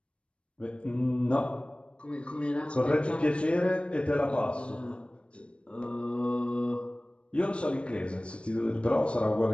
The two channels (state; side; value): late; right; 0.058 ms